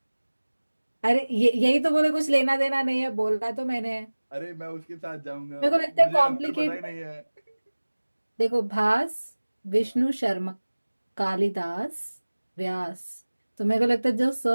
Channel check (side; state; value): both; inverted; correlation -1.00